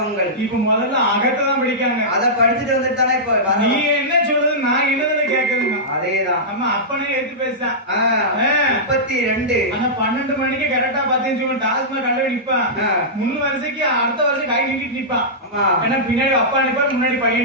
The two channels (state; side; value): normal; both; correlation -0.14